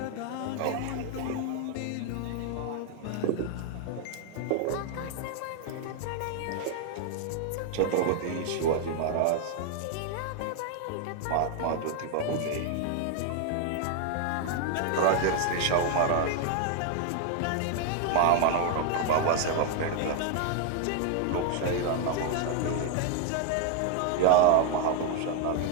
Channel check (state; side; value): different; both; correlation 0.00